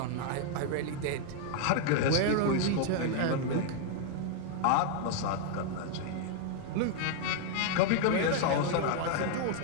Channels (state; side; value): different; both; correlation 0.00